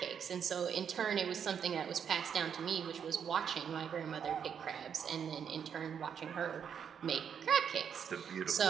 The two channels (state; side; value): quieter; left; 7.7 dB